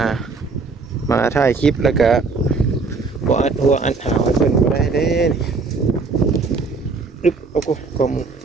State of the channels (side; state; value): left; quieter; 4.3 dB